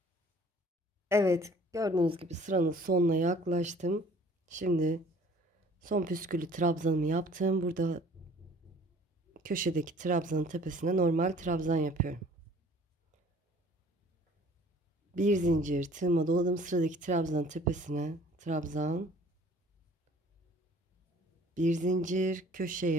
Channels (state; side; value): normal; both; correlation 0.53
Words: Evet, gördüğünüz gibi sıranın sonuna yaklaştım. Şimdi son püsküllü trabzanımı yaptım. Burada köşedeki trabzanın tepesine normal trabzan yapıyorum. Bir zincir tığıma doladım. Sıradaki trabzanın tepesine trabzan. Bir zincir